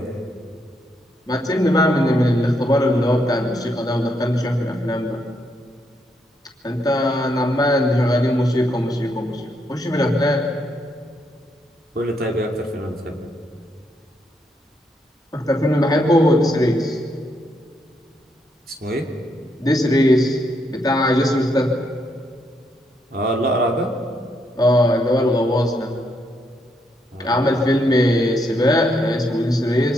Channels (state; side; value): normal; both; correlation 0.77